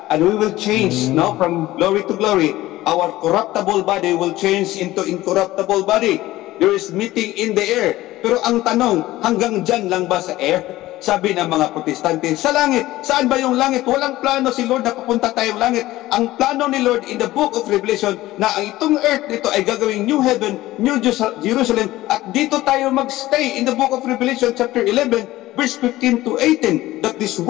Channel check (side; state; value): right; quieter; 16.7 dB